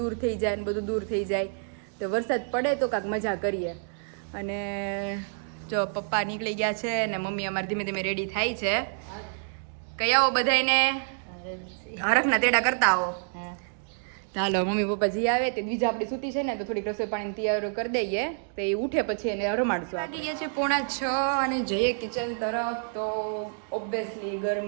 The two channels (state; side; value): silent; left; digital silence